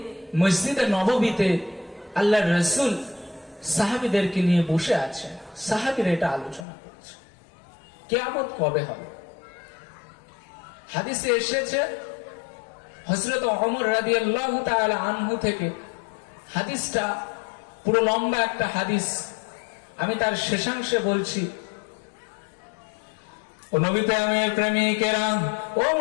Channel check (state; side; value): drops out; right; at 6.7 s